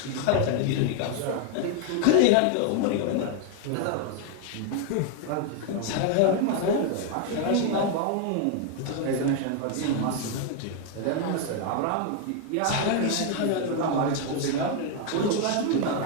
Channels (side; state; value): both; different; correlation 0.00